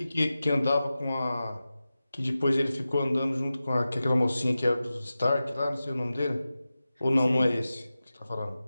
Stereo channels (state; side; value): inverted; both; correlation -0.94